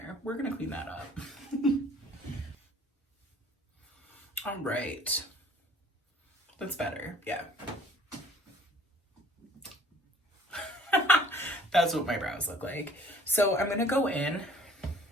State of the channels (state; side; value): normal; both; correlation 0.54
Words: We're gonna clean that up. All right. That's better, yeah. That's what my brows look like. So I'm gonna go in